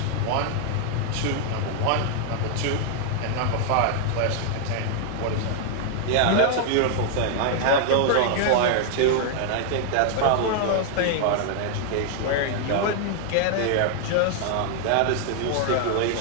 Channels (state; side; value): different; both; correlation 0.00